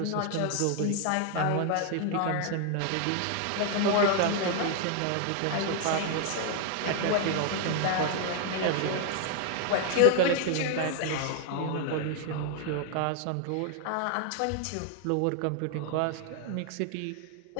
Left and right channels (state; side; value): different; both; correlation 0.00